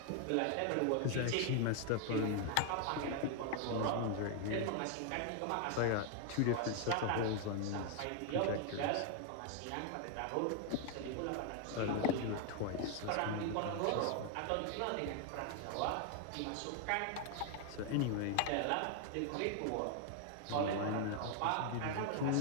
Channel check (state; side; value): different; both; correlation 0.00